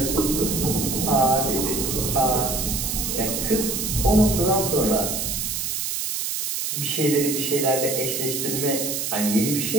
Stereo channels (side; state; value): right; noise; hiss, 2 dB below the sound